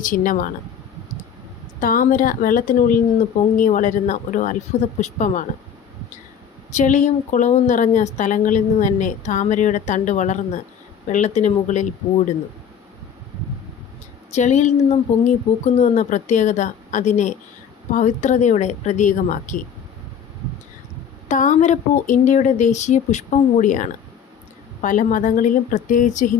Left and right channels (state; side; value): quieter; right; 7.8 dB